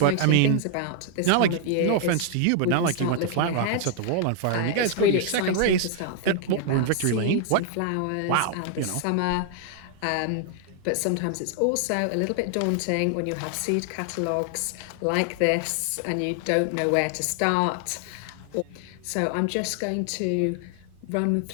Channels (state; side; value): different; both; correlation 0.00